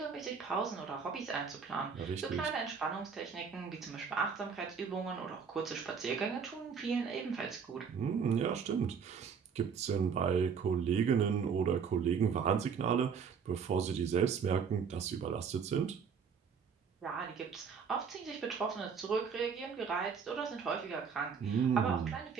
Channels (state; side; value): quieter; left; 6.3 dB